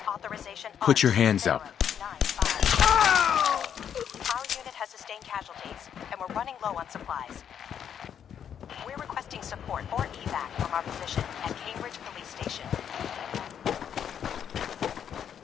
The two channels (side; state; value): right; quieter; 8.6 dB